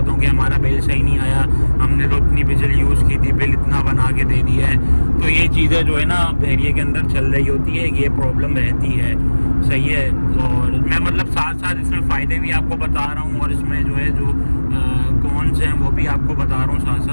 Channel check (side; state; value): both; inverted; correlation -1.00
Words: हूँ कि हमारा बिल सही नहीं आया, हमने तो इतनी बिजली यूज़ की थी, बिल इतना बना के दे दिया है। तो ये चीज़ें जो है ना बहरिया के अंदर चल रही होती है, ये प्रॉब्लम रहती है। सही है, और मैं मतलब साथ साथ इसमें फ़ायदे भी आपको बता रहा हूँ, और इसमें जो है जो कौन से हैं वो भी आपको बता रहा हूँ साथ